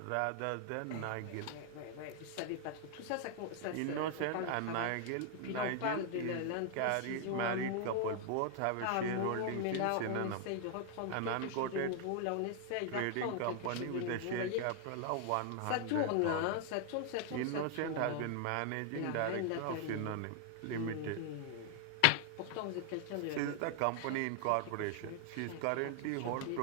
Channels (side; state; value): both; different; correlation 0.00